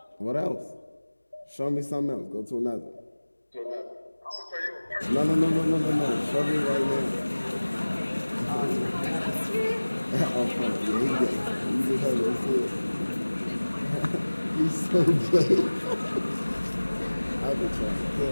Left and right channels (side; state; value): both; inverted; correlation -1.00